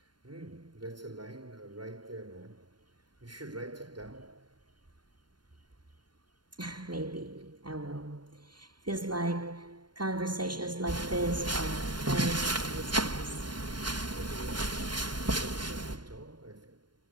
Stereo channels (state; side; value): late; left; 0.71 ms